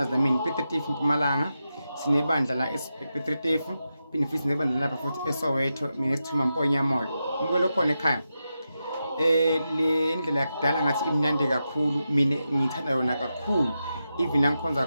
nami Pitretifu Mpumalanga sinebandla la ePitretifu phinde futhi sinebandla lapha futhi eSoweto mina esithuma Mponya moyo mkulo khona ekhaya le ndlela yakudala ngathi imnandi kakhulu mina ngithanda yona kakhulu even langikhonza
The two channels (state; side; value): inverted; both; correlation -0.89